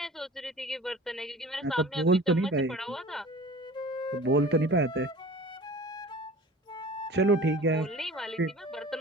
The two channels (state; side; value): normal; both; correlation 0.42